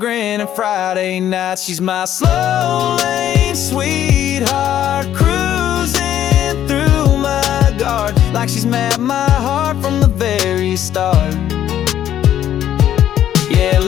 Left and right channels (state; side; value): quieter; right; 11.1 dB